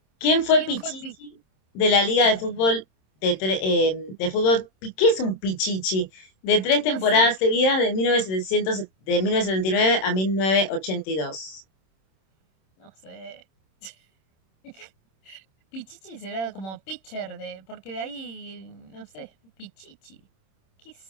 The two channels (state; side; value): late; right; 26 ms